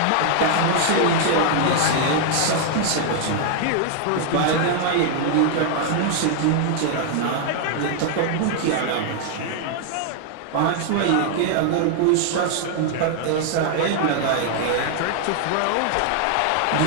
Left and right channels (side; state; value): both; different; correlation 0.00